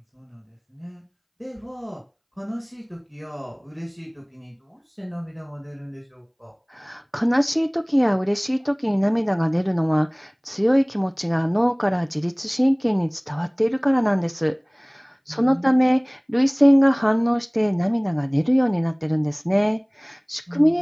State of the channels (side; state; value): both; identical; correlation 1.00